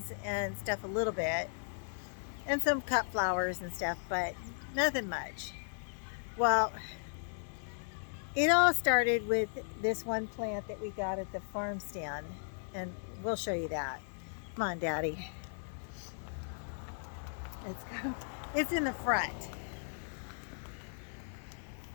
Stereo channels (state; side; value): silent; right; digital silence